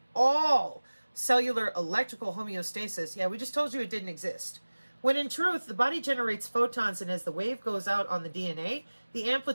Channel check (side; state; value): both; inverted; correlation -1.00